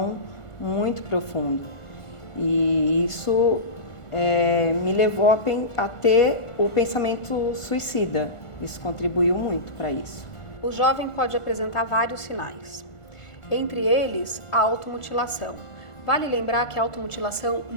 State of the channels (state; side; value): late; right; 1.4 ms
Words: muito profundo. E isso me levou a ter o pensamento suicida. Isso contribuiu muito para isso. O jovem pode apresentar vários sinais, entre eles a automutilação. Vale lembrar que a automutilação